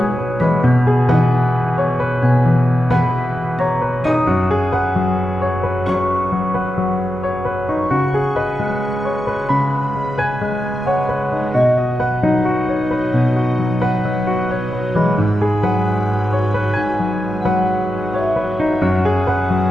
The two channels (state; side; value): noise; right; hum, 17 dB below the sound